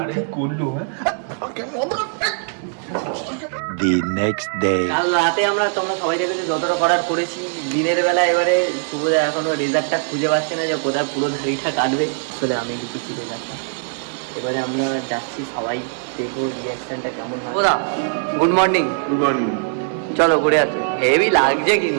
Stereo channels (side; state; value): left; silent; digital silence